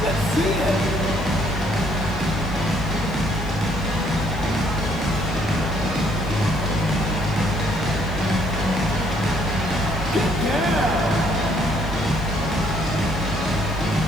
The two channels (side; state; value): left; noise; hiss, 25 dB below the sound